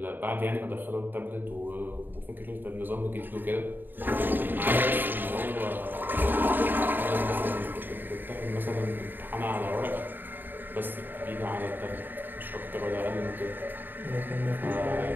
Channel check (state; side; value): late; left; 0.092 ms